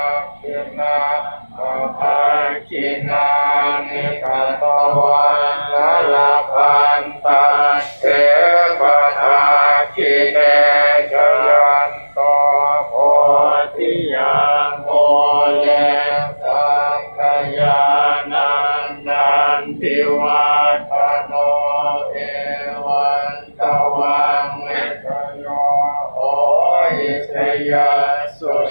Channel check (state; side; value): inverted; both; correlation -1.00